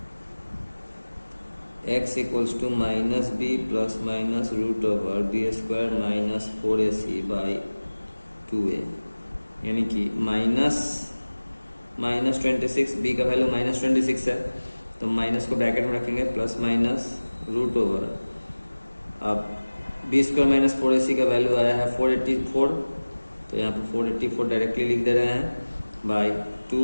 x equals to minus B plus minus root over B square minus 4ac by 2a, यानी कि -26 बी का वैल्यू -26 है तो माइनस को ब्रैकेट में रखेंगे प्लस माइनस रूट ओवर, अब बी स्क्वायर माइनस 4ac का वैल्यू आया है 484, तो यहाँ पर 484 डायरेक्टली लिख दे रहे हैं बाई 2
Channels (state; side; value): inverted; both; correlation -1.00